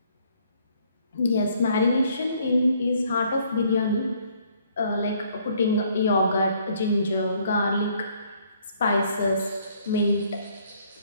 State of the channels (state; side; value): inverted; both; correlation -0.64